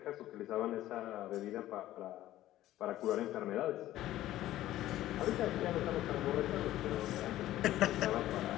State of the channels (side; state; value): right; quieter; 14.3 dB